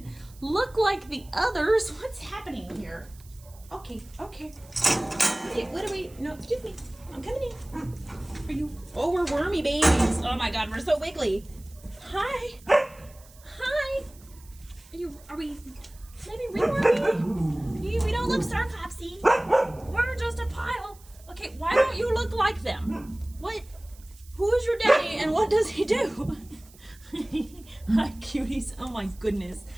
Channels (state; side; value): noise; right; hiss, 25 dB below the sound